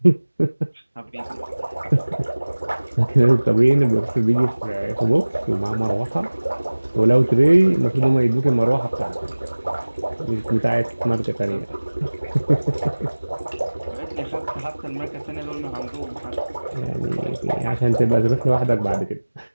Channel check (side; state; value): both; inverted; correlation -1.00